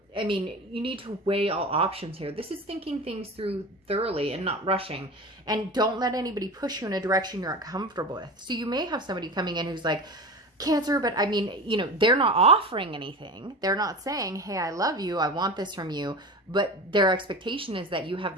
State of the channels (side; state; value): both; normal; correlation 0.30